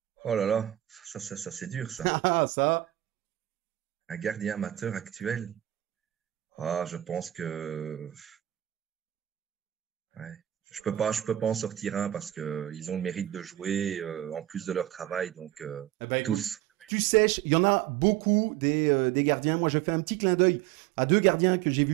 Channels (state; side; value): quieter; left; 13.9 dB